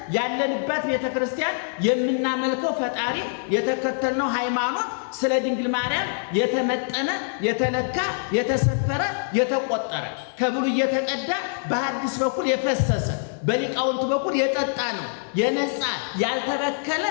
ያለንበት ቤተክርስቲያን የምናመልከው ፈጣሪ የተከተልነው ሃይማኖት ስለ ድንግል ማርያም የተመጠነ የተለካ የተሰፈረ የተቆጠረ ከብሉይ የተቀዳ በሐዲስ በኩል የፈሰሰ በሊቃውንት በኩል የጠጣ ነው። የነጻ ያልተበከለ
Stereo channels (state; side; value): silent; right; 62 dB below the other